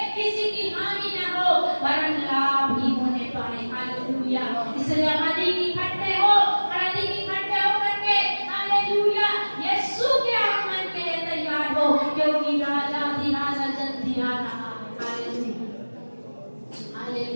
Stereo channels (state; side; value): inverted; both; correlation -1.00